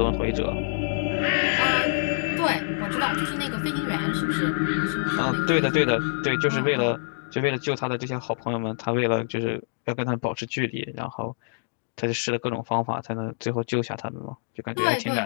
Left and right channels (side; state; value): right; silent; digital silence